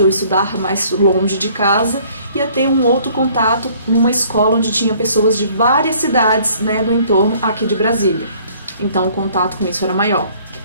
ou estudar mais longe de casa, ia ter um outro contato numa escola onde tinha pessoas de várias cidades, né, do entorno aqui de Brasília. Então o contato com isso era maior.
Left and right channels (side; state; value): both; inverted; correlation -0.58